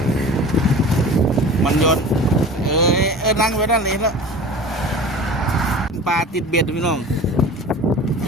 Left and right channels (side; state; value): both; normal; correlation 0.38